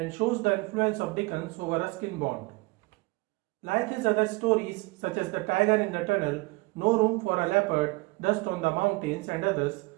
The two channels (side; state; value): left; quieter; 24.2 dB